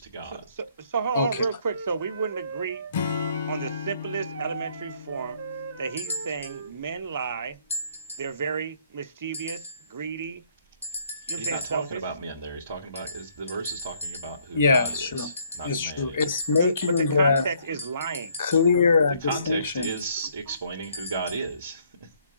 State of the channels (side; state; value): both; inverted; correlation -0.66